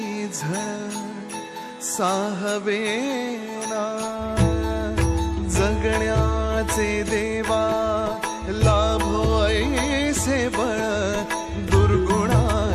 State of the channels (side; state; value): both; identical; correlation 1.00